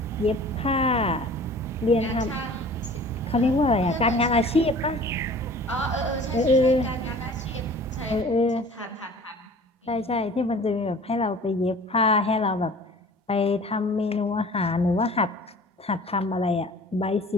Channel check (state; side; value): normal; both; correlation 0.46